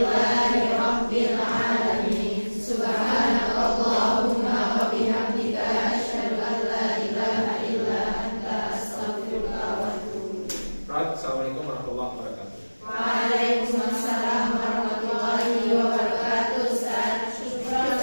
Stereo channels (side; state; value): both; inverted; correlation -1.00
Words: alamin. Subhanakallahumma wa bihamdika asyhadu an la ilaha illa anta astaghfiruka wa atubu ilaik. Assalamualaikum warahmatullahi wabarakatuh. Waalaikumsalam.